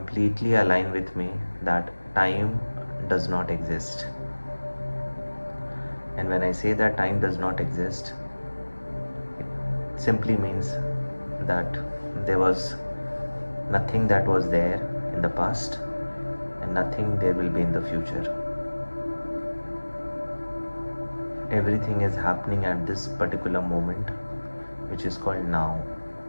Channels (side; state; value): both; inverted; correlation -1.00